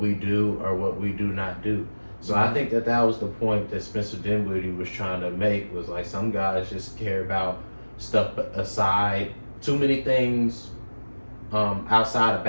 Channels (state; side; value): inverted; both; correlation -1.00